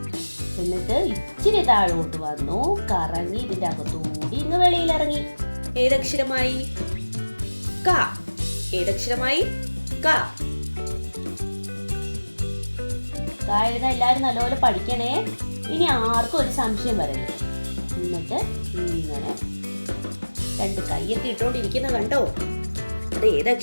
എന്നിട്ട് ഇച്ചിരി താഴോട്ട് വന്നു, കറങ്ങി ഇതിന്റെ അകത്തൂടി ഇങ്ങ് വെളിയിൽ ഇറങ്ങി. ഏതക്ഷരമായി? ക. ഏതക്ഷരമായി? ക. ക എഴുതാൻ എല്ലാവരും നല്ലപോലെ പഠിക്കണേ. ഇനി ആർക്കും ഒരു സംശയം വരല്ലേ. എന്നിട്ട് ഇങ്ങനെ രണ്ട് കൈയൊക്കെ ഇട്ടോണ്ടിരിക്കുന്ന കണ്ടോ? അത്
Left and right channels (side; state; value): both; inverted; correlation -1.00